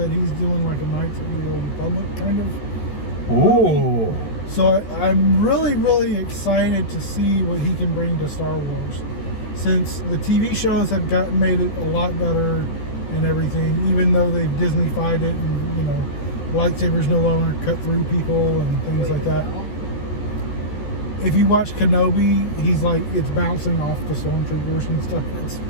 he's doing like a Knights of the Old Republic kind of. Ooh. So I'm really, really excited to see what he can bring to Star Wars. since the TV shows have made it a lot better and everything, even though they've Disney-fied it and, you know, lightsabers no longer cut through people and things like that. No. If you watch Kenobi, he's like, it's bouncing off the stormtroopers and stuff.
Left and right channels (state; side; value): late; right; 14 ms